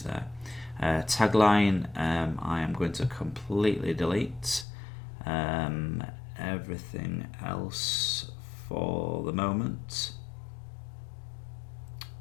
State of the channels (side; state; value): right; drops out; at 4.7 s